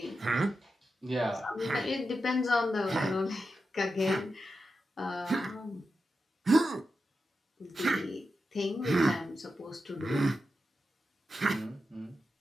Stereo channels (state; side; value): normal; both; correlation 0.89